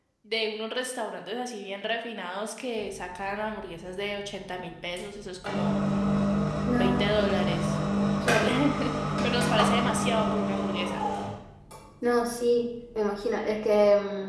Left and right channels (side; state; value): both; identical; correlation 1.00